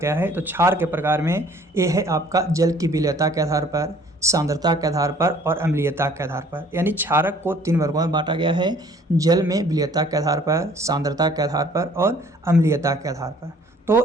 है? तो क्षार के प्रकार में ये है आपका जल की विलयता के आधार पर, सांद्रता के आधार पर और अम्लीयता के आधार पर। यानी क्षारक को 3 वर्गों में बांटा गया है, जल में विलयता के आधार पर, सांद्रता के आधार पर और अम्लीयता के आधार पर।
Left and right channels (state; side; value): normal; both; correlation 0.56